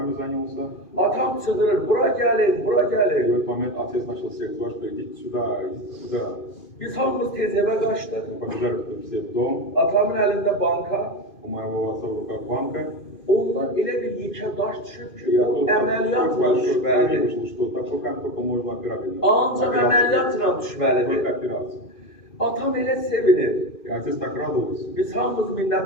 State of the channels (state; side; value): late; right; 2.5 ms